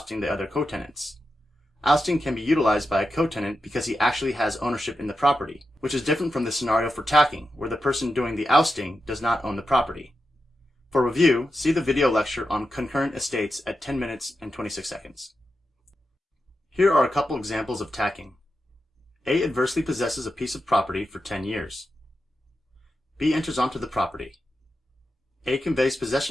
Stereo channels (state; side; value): normal; both; correlation 0.89